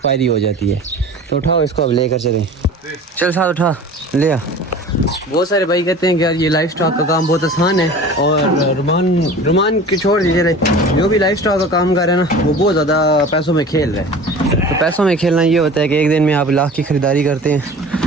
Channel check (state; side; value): normal; both; correlation 0.40